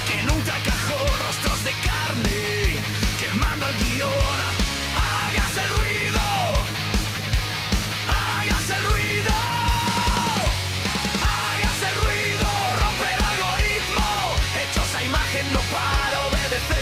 que nunca encajó, rostros de carne quemando el guión. Hágase ruido, hágase ruido, hágase ruido, rompe el algoritmo, hechos a imagen no para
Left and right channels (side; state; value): both; identical; correlation 1.00